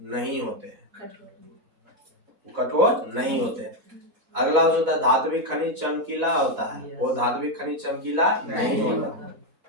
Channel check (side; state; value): left; late; 4.0 ms